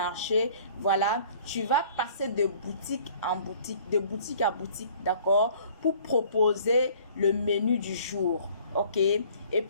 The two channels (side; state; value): both; inverted; correlation -0.53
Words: voilà, tu vas passer de boutique en boutique, de boutique à boutique, d'accord, pour proposer le menu du jour, ok? Et